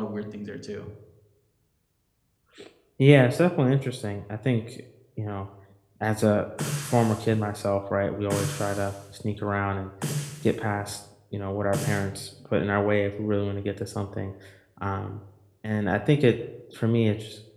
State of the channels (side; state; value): both; identical; correlation 1.00